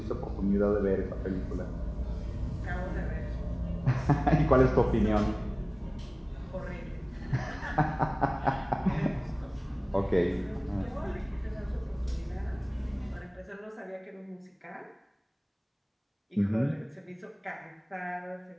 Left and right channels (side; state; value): both; identical; correlation 1.00